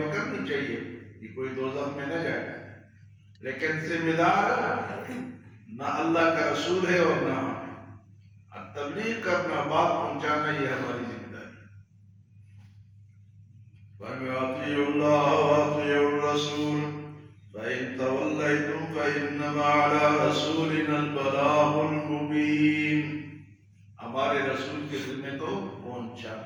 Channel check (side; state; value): both; identical; correlation 1.00